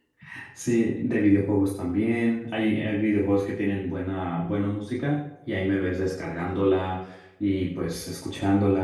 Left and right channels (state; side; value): identical; both; correlation 1.00